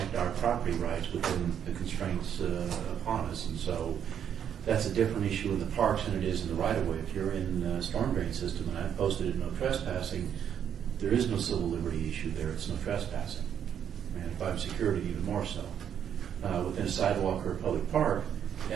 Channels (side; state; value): left; quieter; 8.9 dB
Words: our property rights within the constraints upon us? And so that's a different issue in the parks than it is in the right-of-way. If you're in the storm drain system, and I've posted it no trespassing, there is no civil liberty issue there. It's no trespassing. And if I'm security, even more so. Within a sidewalk or a public park,